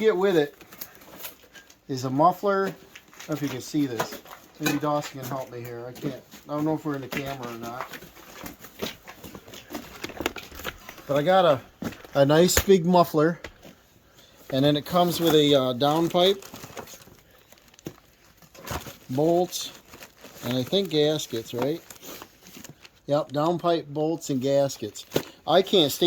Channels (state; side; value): identical; both; correlation 1.00